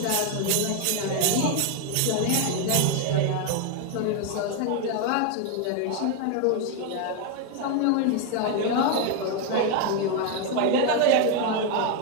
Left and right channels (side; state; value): both; different; correlation 0.01